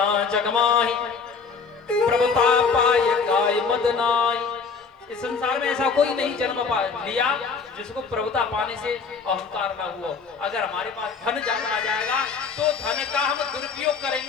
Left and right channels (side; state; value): right; quieter; 5.2 dB